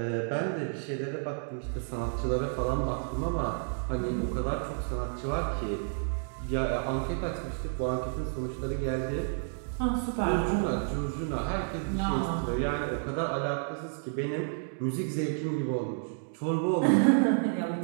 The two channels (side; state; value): left; silent; digital silence